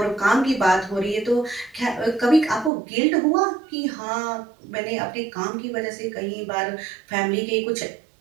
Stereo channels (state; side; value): drops out; left; at 2.7 s